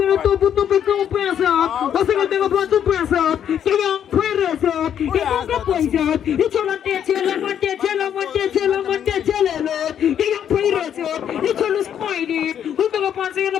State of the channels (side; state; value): right; quieter; 9.3 dB